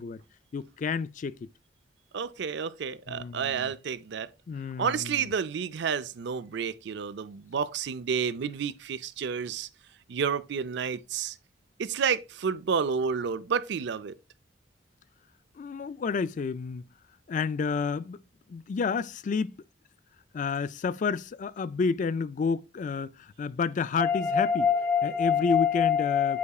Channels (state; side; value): normal; both; correlation 0.27